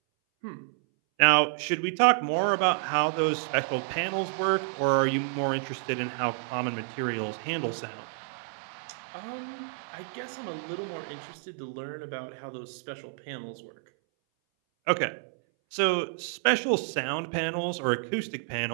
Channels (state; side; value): silent; left; 58 dB below the other